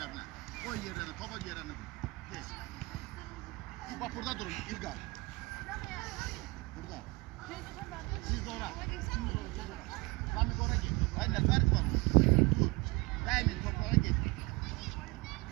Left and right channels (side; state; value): left; quieter; 25.1 dB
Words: Koy yerlerine, topa yerlerine. Tez. Bak burada durun İlgar. Burada. Siz de oraya. Lan bir oraya git. Hayır ne fark var? Dur. Değmeyin toplara git.